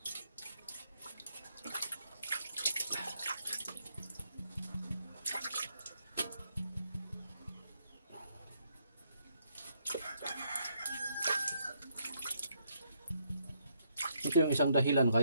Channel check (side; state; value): both; inverted; correlation -0.73